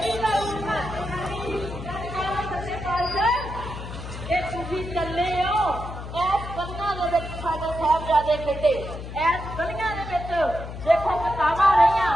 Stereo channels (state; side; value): noise; left; hum, 9 dB below the sound